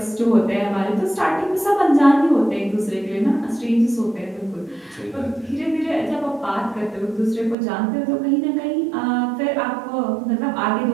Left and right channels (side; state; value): left; drops out; at 7.6 s